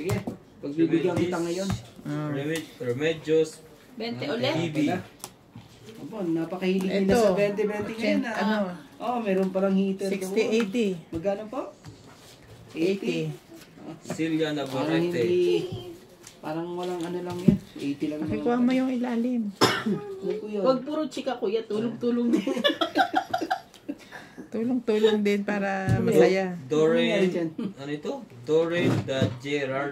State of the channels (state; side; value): identical; both; correlation 1.00